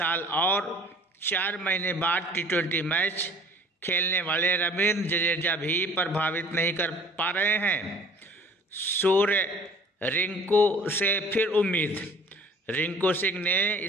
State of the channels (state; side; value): normal; both; correlation 0.50